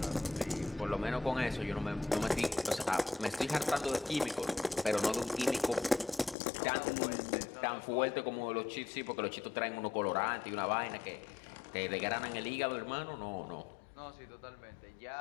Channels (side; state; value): right; drops out; at 6.4 s